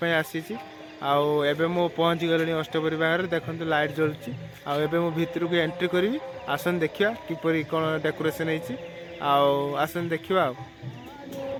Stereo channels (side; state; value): both; identical; correlation 1.00